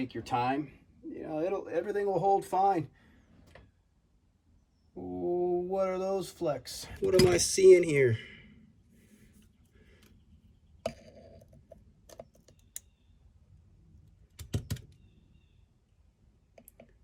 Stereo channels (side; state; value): both; identical; correlation 1.00